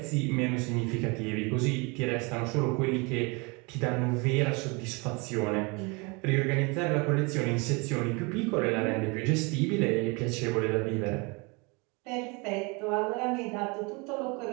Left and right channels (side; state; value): left; quieter; 29.0 dB